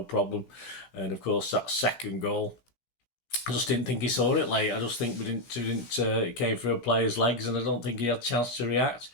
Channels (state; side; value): late; right; 17 ms